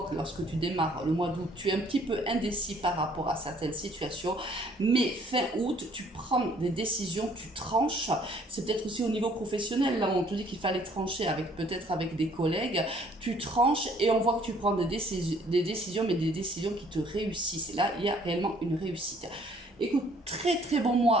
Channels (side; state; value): both; normal; correlation 0.60